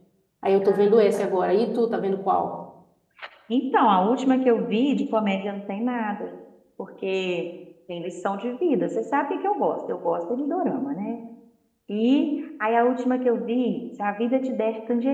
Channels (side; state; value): both; identical; correlation 1.00